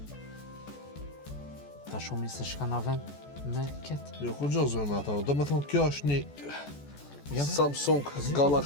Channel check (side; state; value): right; late; 14 ms